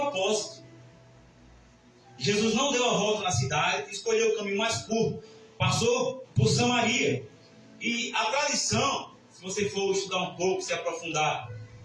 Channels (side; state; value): both; identical; correlation 1.00